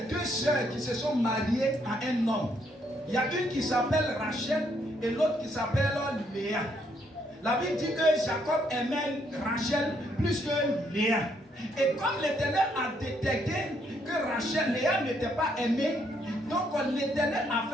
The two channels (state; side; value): normal; both; correlation 0.72